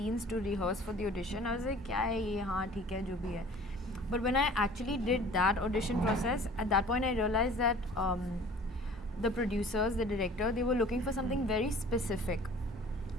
to rehearse for the audition, I was like, क्या है ये, हाँ ठीक है जो भी है. But when I actually did that audition process, at that point I realized that the producers, the director, they were looking for something very specific.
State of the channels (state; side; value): normal; both; correlation 0.47